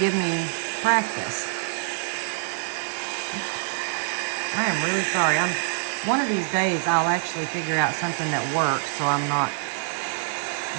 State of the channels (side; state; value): left; silent; digital silence